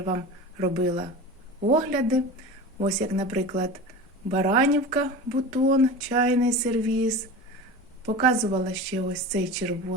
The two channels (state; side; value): normal; both; correlation 0.32